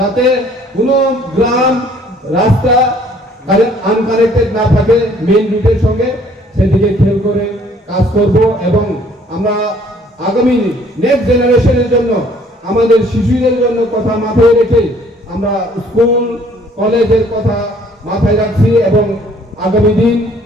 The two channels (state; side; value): normal; both; correlation 0.59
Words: কোনো গ্রাম রাস্তা আনকানেক্টেড না থাকে মেইন রুটের সঙ্গে, সেদিকে খেয়াল করে কাজ করব এবং আমরা আগামী নেক্সট জেনারেশনের জন্য আমাদের শিশুদের জন্য কথা মাথায় রেখে আমরা স্কুল কলেজের কথা মাথায় রাখছি এবং আগামী দিন